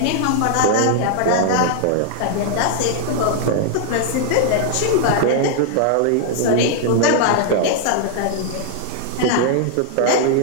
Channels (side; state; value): both; different; correlation -0.01